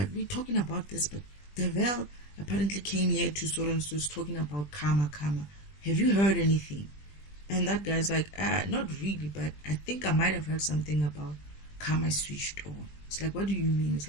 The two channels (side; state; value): right; late; 20 ms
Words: we're talking about this, but Devil apparently came here to so and so is talking about karma. Have you heard anything? And that guy's like, not really, but I think I might have heard something about karma switched on. It's like, what do you mean? It's